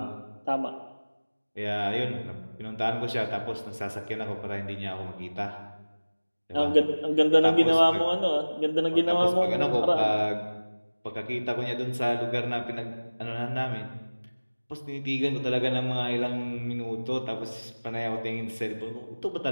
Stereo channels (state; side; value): inverted; both; correlation -1.00